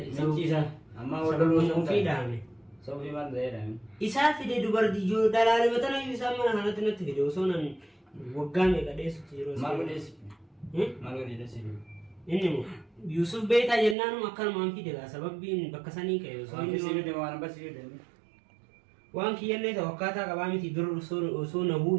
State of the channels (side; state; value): left; drops out; at 14.0 s